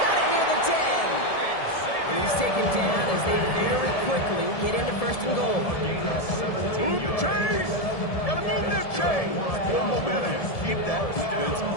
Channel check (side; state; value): right; late; 1.7 ms